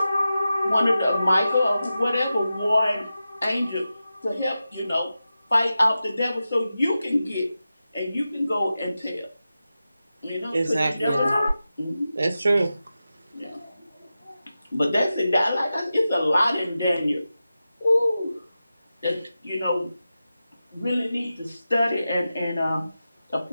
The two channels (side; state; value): both; inverted; correlation -0.92